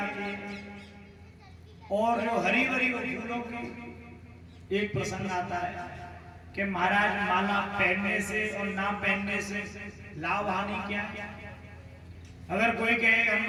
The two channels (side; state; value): both; identical; correlation 1.00